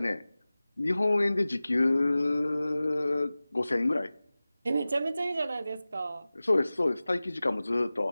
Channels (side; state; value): both; inverted; correlation -0.97